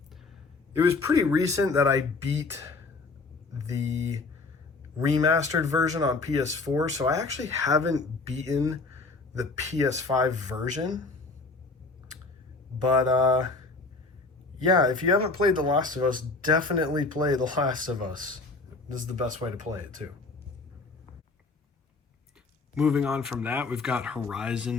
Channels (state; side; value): quieter; right; 3.7 dB